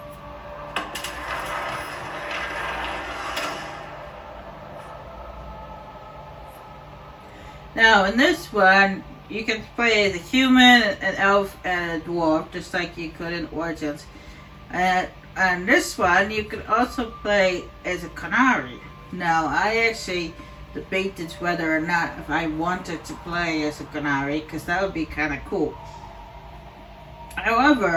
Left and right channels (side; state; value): both; identical; correlation 1.00